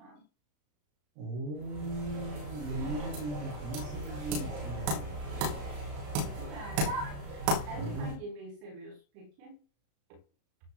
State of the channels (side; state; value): left; late; 34 ms